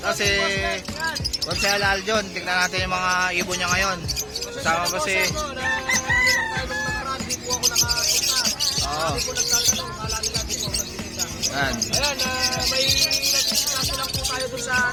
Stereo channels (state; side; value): identical; both; correlation 1.00